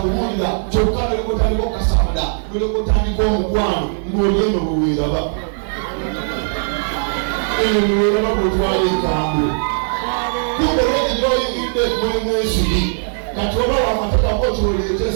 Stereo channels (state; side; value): silent; left; digital silence